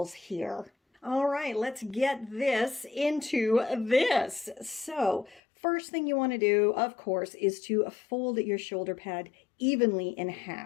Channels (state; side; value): drops out; right; at 5.4 s